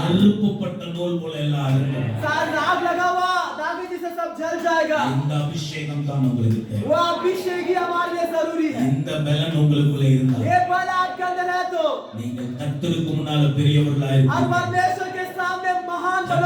நெருப்புப்பட்ட நூல் போல எல்லாம் அறுந்துடும். सारा आग लगा हुआ धागे जिसे सब जल जाएगा। இந்த அபிஷேகம் தான் உங்களுக்கு தேவை. वो अभिषेक ही हमारे लिए जरूरी है। இந்த பலன் உங்களுக்குள்ள இருந்தா ये बल आपके अंदर है तो நீங்கள் கர்த்தருக்கு முன்னால பெரியவர்களா आप இருப்பீங்க. परमेश्वर के सामने महान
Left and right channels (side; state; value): both; identical; correlation 1.00